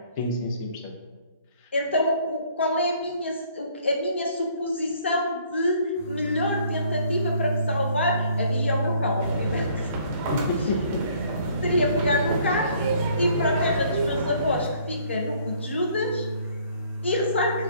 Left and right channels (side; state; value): both; inverted; correlation -0.60